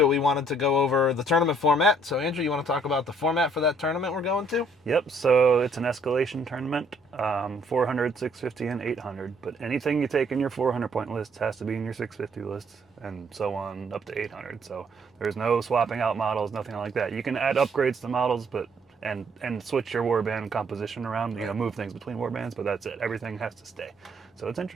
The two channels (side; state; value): both; normal; correlation 0.65